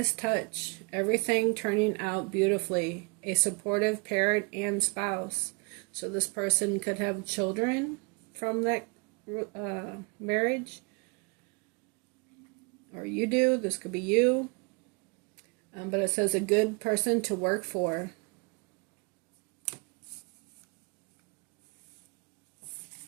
touch, everything turning out beautifully, a supportive parent and spouse. So this person could have children from that marriage, or you do. This could be you. But it says a good person to work for.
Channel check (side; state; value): left; quieter; 31.0 dB